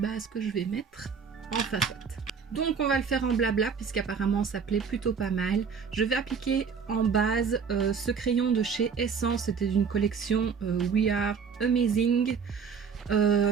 que je vais mettre. Enfin soit. Donc on va le faire en blabla puisqu'apparemment ça plaît plutôt pas mal. Je vais appliquer en base ce crayon de chez Essence, c'était d'une collection We Are Amazing.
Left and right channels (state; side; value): quieter; left; 6.1 dB